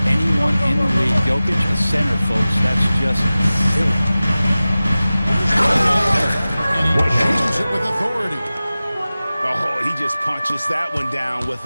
anyone in the league. Jokic, a center, folks. That's just silly. And he shoots it with authority. Oh, he just punches that one down with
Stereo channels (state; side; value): inverted; both; correlation -0.97